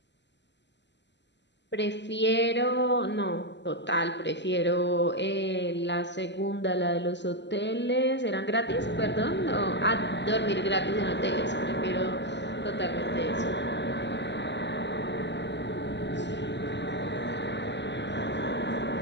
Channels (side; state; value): right; late; 0.51 ms